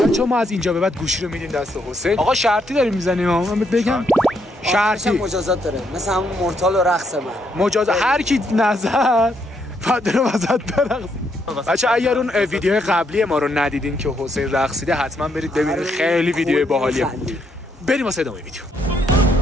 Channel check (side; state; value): both; normal; correlation 0.75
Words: چون ما از اینجا به بعد گوشی رو میدیم دست حسین. آقا شرطی داریم میزنیم. من بگم شرطی مجازات داره، مثل همون مورتال و رقص من. مجازات هر کی نظر فدر وسط برقص. بچه اگر اون ویدیو قبلی ما رو ندیدین که حسین رقصیده حتما برید ببینید، خیلی ویدیو باحالیه. بریم واسه ادامه ویدیو.